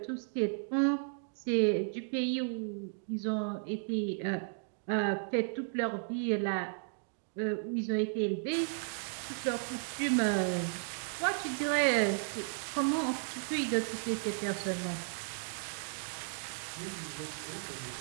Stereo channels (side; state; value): left; silent; digital silence